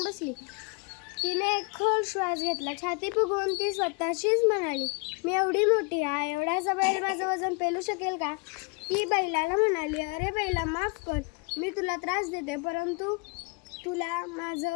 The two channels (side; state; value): right; quieter; 32.2 dB